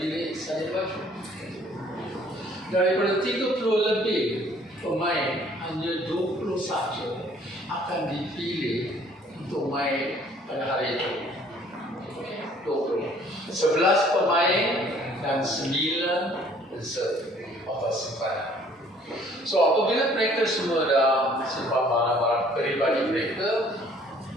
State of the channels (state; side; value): normal; both; correlation 0.57